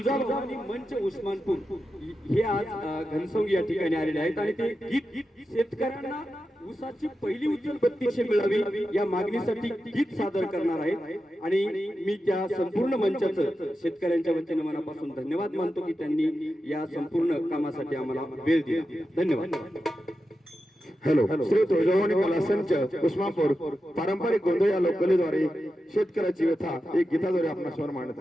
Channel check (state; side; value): normal; both; correlation 0.90